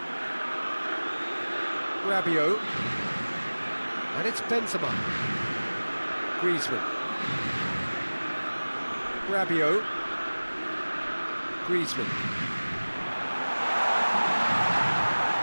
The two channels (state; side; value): inverted; both; correlation -1.00